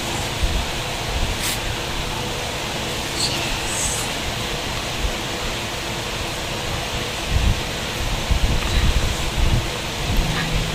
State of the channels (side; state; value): both; identical; correlation 1.00